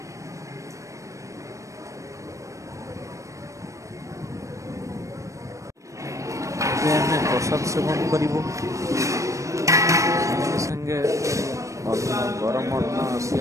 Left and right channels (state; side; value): late; left; 0.15 ms